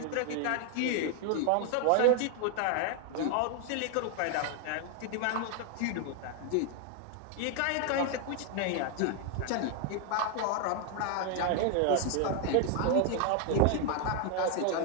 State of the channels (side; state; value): both; different; correlation 0.01